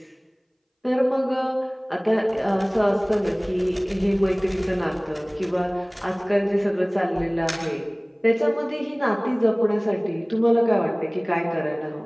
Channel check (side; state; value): both; identical; correlation 1.00